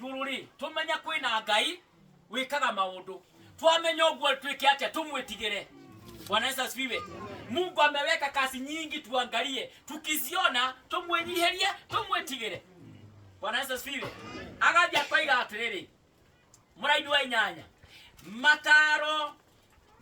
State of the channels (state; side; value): identical; both; correlation 1.00